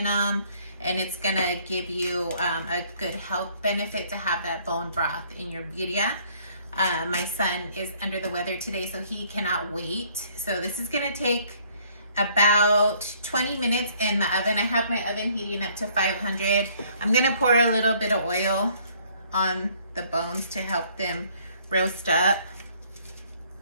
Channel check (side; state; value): both; inverted; correlation -0.62